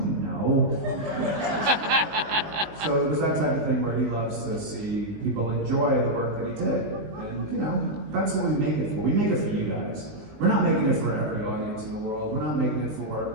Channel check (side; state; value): left; late; 20 ms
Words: know. So it was that type of thing where he loves to see people enjoy the work that he did. And you know, that's what we make it for. We make it for you guys. We're not making it for every audience in the world. We're not making it